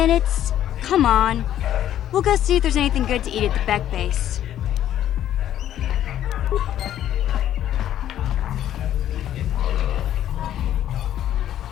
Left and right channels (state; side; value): quieter; right; 11.5 dB